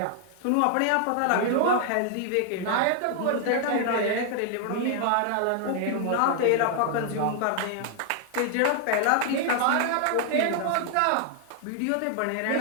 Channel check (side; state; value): both; different; correlation 0.00